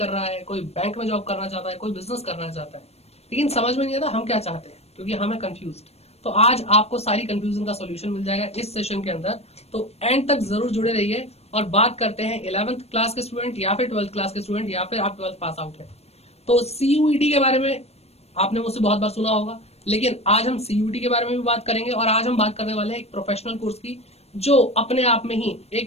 रहा है, कोई बैंक में जॉब करना चाहता है, कोई बिजनेस करना चाहता है, लेकिन समझ में नहीं आता हम क्या चाहते हैं, क्योंकि हमें कंफ्यूज। तो आज आपको सारी कंफ्यूजन का सॉल्यूशन मिल जाएगा इस सेशन के अंदर। तो एंड तक जरूर जुड़े रहिए और बात करते हैं 11th क्लास के स्टूडेंट या फिर 12th क्लास के स्टूडेंट या फिर आप 12th पास आउट है। तो सीयूईटी के बारे में आपने मुझसे बहुत बार सुना होगा, लेकिन आज हम सीयूटी के बारे में भी बात करेंगे। और आज हम बात करने वाले हैं एक प्रोफेशनल कोर्स की, जो अपने आप में ही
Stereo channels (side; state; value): right; late; 0.30 ms